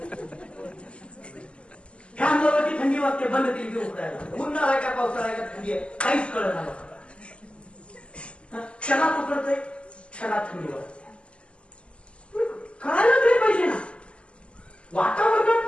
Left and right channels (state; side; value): late; right; 0.055 ms